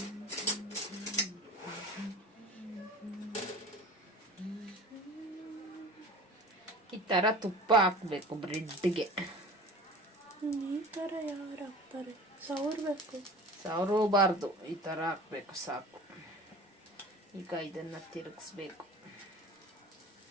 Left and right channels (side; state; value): both; normal; correlation 0.40